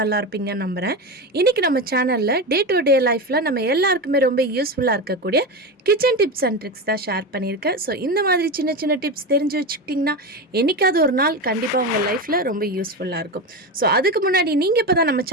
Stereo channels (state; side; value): normal; both; correlation 0.19